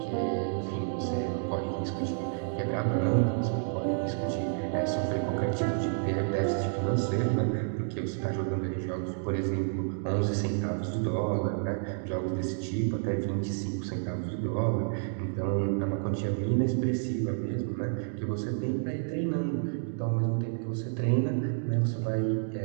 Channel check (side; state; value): left; silent; digital silence